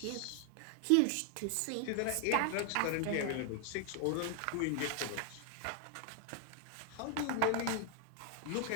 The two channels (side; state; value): both; different; correlation 0.00